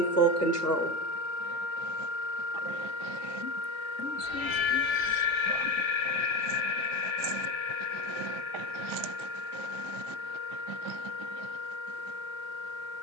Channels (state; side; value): late; right; 1.5 ms